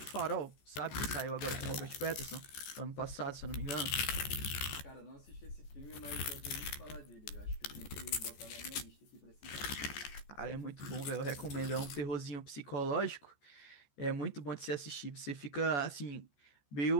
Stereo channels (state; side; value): late; right; 14 ms